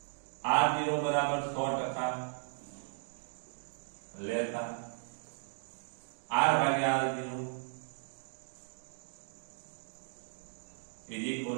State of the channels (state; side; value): silent; left; digital silence